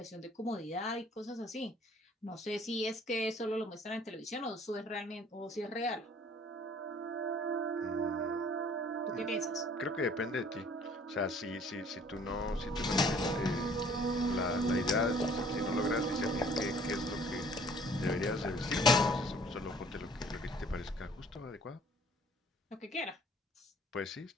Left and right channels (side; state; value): both; normal; correlation 0.55